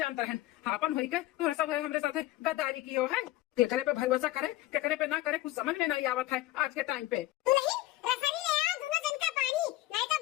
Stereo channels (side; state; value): right; quieter; 16.9 dB